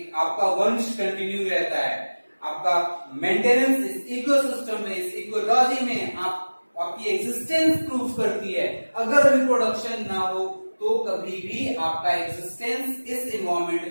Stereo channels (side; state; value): both; inverted; correlation -1.00